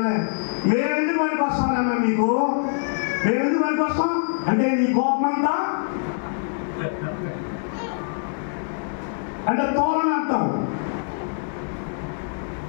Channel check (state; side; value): silent; right; 63 dB below the other